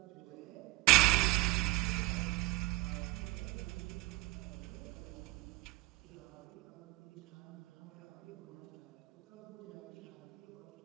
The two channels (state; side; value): quieter; left; 21.5 dB